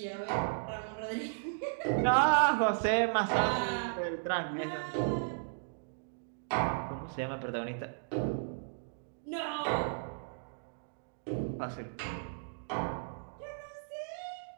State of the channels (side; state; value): left; silent; digital silence